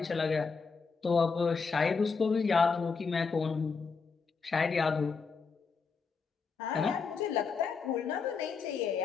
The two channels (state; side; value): quieter; right; 5.1 dB